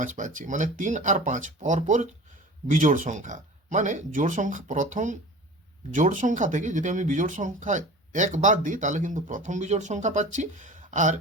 পাচ্ছি। মানে 3 আর 5 পরপর বিজোড় সংখ্যা। মানে জোড় সংখ্যা, প্রথম জোড় সংখ্যা থেকে যদি আমি বিজোড় সংখ্যা 1 বাদ দিই তাহলে কিন্তু প্রথম বিজোড় সংখ্যা পাচ্ছি, আর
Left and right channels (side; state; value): both; normal; correlation 0.39